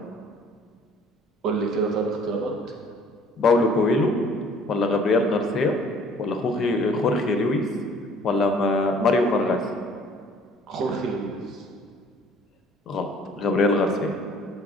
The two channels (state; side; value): normal; both; correlation 0.55